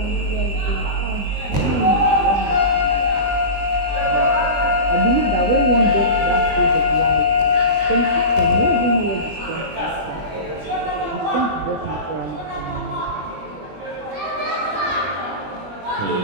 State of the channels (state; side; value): late; left; 20 ms